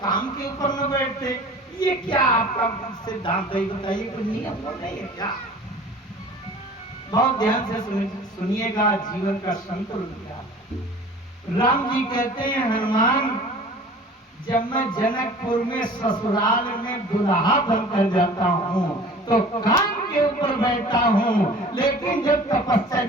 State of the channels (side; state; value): both; normal; correlation 0.44